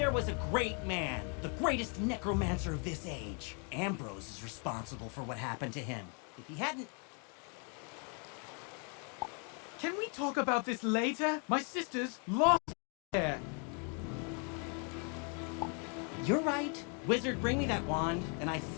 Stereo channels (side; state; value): right; quieter; 38.2 dB